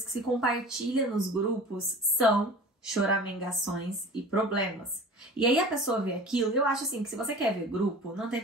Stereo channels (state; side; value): normal; both; correlation 0.39